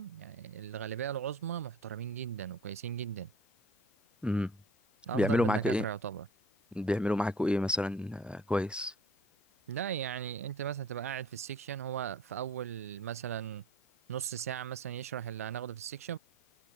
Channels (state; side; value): normal; both; correlation 0.48